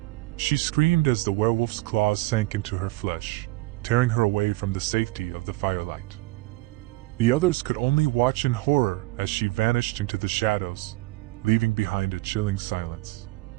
She screamed as the werewolf's claws sank into her flesh, tearing her away from the safety of the firelight. The others could only watch in horror as she vanished into the shadows, leaving behind a chilling silence.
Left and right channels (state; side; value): quieter; left; 20.2 dB